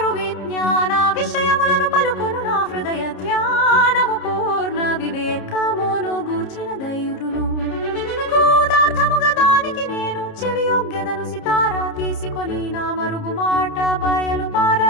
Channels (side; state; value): right; late; 30 ms